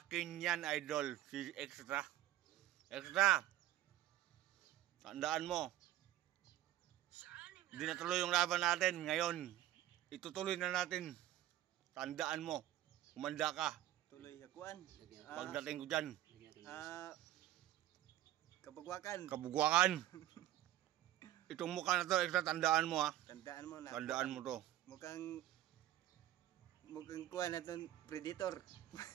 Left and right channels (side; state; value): left; quieter; 13.6 dB